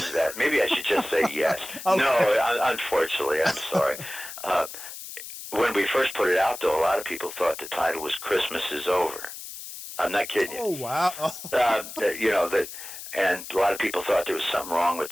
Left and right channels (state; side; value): noise; left; hiss, 11 dB below the sound